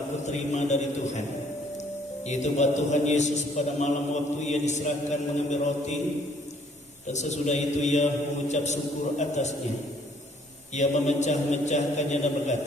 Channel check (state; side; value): normal; both; correlation 0.62